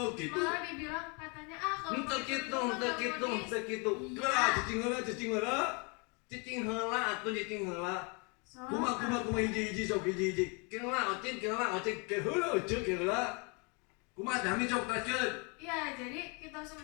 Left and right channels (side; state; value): right; quieter; 32.9 dB